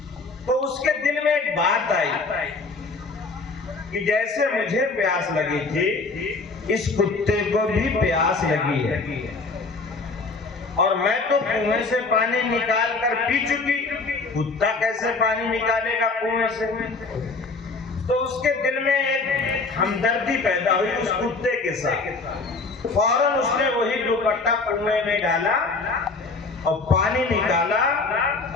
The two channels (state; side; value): quieter; right; 3.9 dB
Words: تو اس کے دل میں ایک بات آئی کہ جیسے مجھے پیاس لگی تھی اس کتے کو بھی پیاس لگی ہے، اور میں تو کنویں سے پانی نکال کر پی چکی، کتا کیسے پانی نکالے گا کنویں سے؟ تو اس کے دل میں ایک ہمدردی پیدا ہوئی اس کتے کے ساتھ. فوراً اس نے وہی دوپٹہ کنویں میں ڈالا اور پانی نکالا